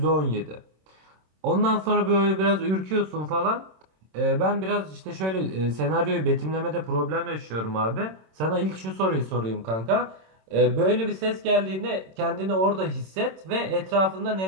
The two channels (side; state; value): left; late; 26 ms